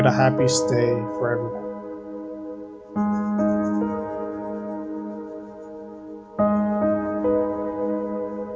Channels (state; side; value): identical; both; correlation 1.00